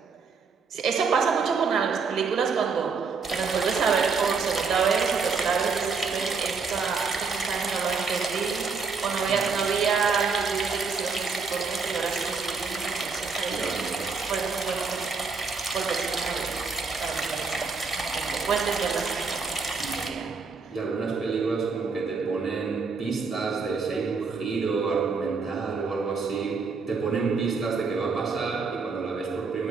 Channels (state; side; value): quieter; left; 4.8 dB